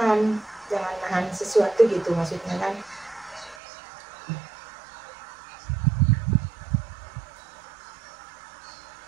sesuatu gitu maksudnya kan.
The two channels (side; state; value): left; drops out; at 3.6 s